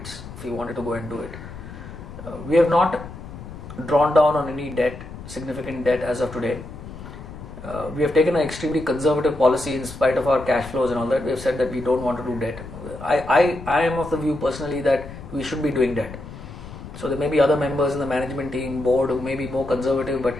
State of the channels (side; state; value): left; noise; rumble, 13 dB below the sound